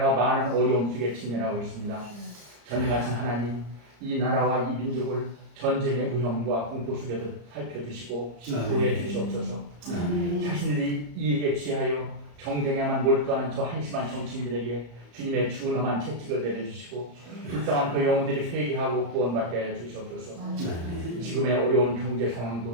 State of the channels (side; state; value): left; late; 34 ms